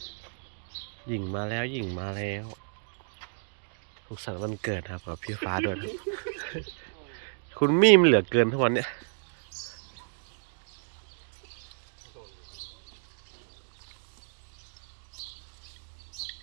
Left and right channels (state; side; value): silent; left; digital silence